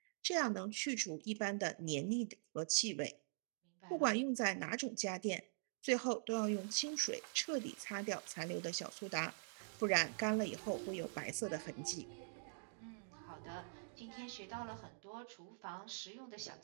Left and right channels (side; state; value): left; silent; digital silence